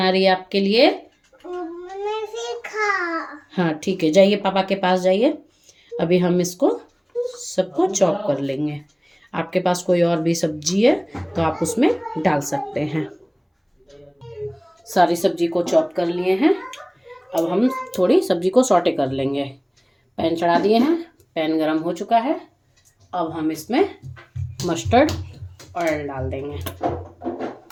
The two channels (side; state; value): both; identical; correlation 1.00